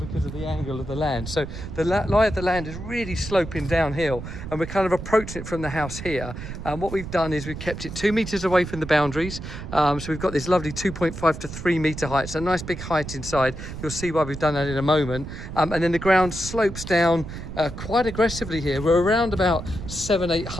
of the angle of the land. So the lie of the land is really sloping downhill and we're kind of approaching it from the house here. And what we've done is we've kept it 2 meters away from the boundaries. So we've got this lovely 2.5 to 3 meter height. So a nice big height inside. You'll see why we've done that in a moment. And then the ground slopes down quite aggressively here. We're around about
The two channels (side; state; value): right; noise; rumble, 9 dB below the sound